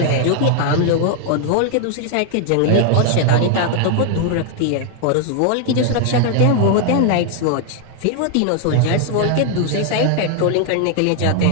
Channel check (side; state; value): both; different; correlation 0.00